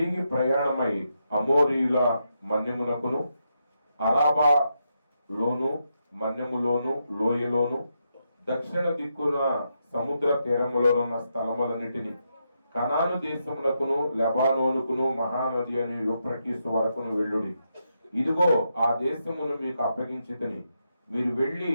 ప్రయాణమై అమోరీయుల మన్యమునకును అరాబా లోను మన్యములోను లోయలోను దక్షిణ దిక్కున సముద్ర తీరములోనున్న స్థలములన్నిటిని కనాను దేశమునకును లెబానోనుకును మహానది అని యూఫ్రటీసు వరకును వెళ్ళుడి. ఇదిగో ఆ దేశమును మీకు అప్పగించితిని. మీరు వెళ్ళి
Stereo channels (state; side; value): inverted; both; correlation -0.82